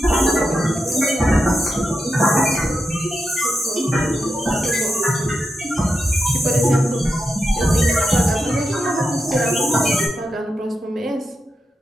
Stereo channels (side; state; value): both; normal; correlation 0.87